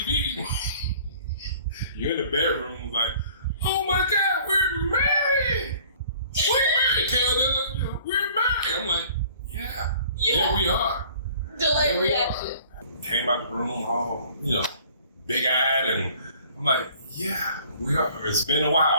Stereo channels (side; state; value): both; inverted; correlation -0.52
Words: You're in the bedroom like, oh my God, we're married. We're married. I'm like, yeah, we are. Delayed reaction. Came out the room all, big-eyed, and I'm like, yeah, we are. It's been a